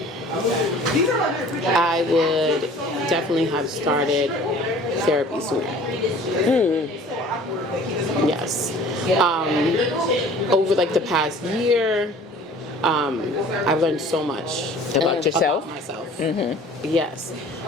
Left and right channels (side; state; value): both; normal; correlation 0.48